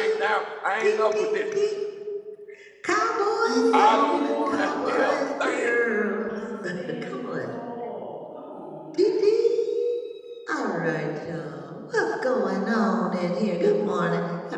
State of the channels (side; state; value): both; identical; correlation 1.00